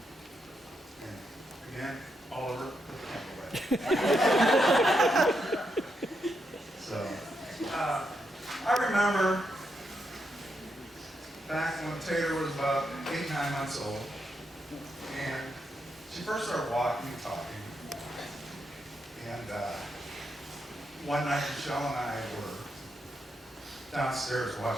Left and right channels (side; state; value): both; normal; correlation 0.82